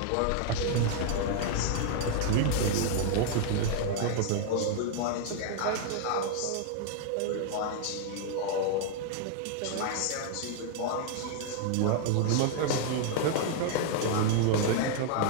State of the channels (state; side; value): different; both; correlation 0.00